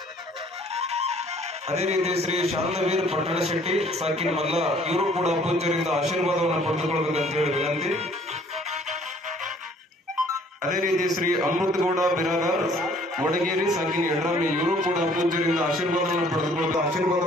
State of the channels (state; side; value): normal; both; correlation 0.58